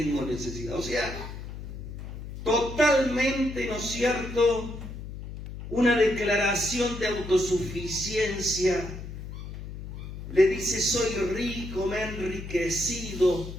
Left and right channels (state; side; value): noise; left; hum, 10 dB below the sound